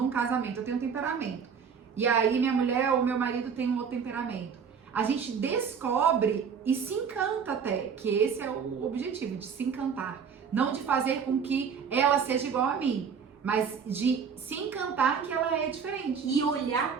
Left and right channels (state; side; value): quieter; left; 6.6 dB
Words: casamento, eu tenho um temperamento. E aí, minha mulher ou meu marido tem um outro temperamento. A gente descobre e se encanta até, que esse é o objetivo, de se encantar. Não de fazer com que ela seja igual a mim, mas de se encantar que ela é diferente. E olhar